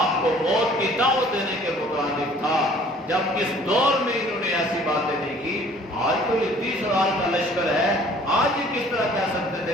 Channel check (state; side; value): normal; both; correlation 0.54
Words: کو موت کی دعوت دینے کے مترادف تھا، جب اس دور میں انہوں نے ایسی باتیں نہیں کی۔ آج تو یہ 30,000 کا لشکر ہے، آج یہ کس طرح کہہ سکتے